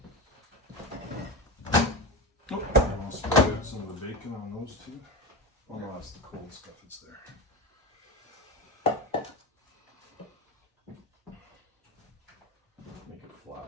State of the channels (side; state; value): both; normal; correlation 0.22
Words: Oh, and we'll spread out some of the bacon on those two. Oh no, that's the cold stuff. It's there. Make it flat